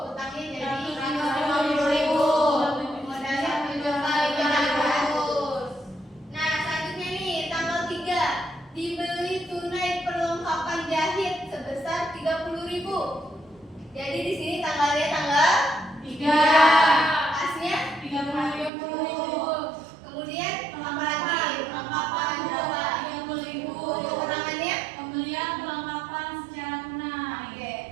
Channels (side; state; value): left; drops out; at 18.7 s